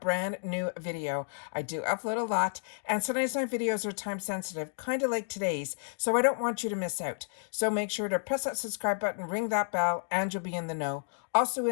brand new video. I do upload a lot, and sometimes my videos are time sensitive, kind of like today's, so I don't want you to miss out. So make sure to press that subscribe button, ring that bell, and you'll be in the know. Also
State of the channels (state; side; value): silent; right; digital silence